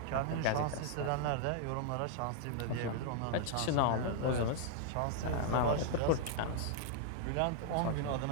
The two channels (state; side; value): different; both; correlation -0.01